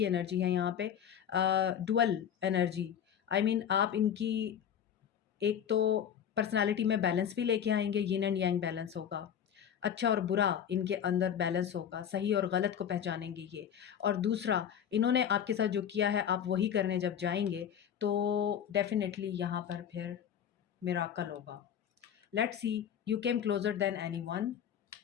एनर्जी है यहाँ पे, डुअल एनर्जी। आई मीन आप इनकी एक तो पर्सनालिटी में बैलेंस भी लेके आएंगे, यिन एंड यांग बैलेंस होगा, अच्छा और बुरा इनके अंदर बैलेंस होगा, सही और गलत को पहचानेंगे ये। और दूसरा, इन्होंने आपके साथ जो किया है आप वही करने जब जाएंगे तो डेफिनेटली यहाँ पर फिर मिराकल होगा। Let's see, you came closure than anyone.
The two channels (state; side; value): quieter; right; 8.9 dB